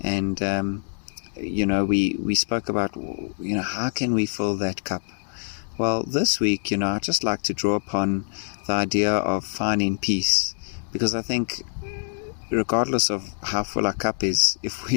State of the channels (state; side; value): silent; right; 61 dB below the other